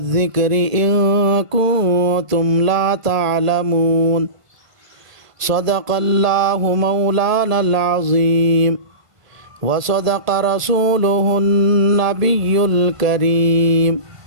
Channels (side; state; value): left; late; 1.5 ms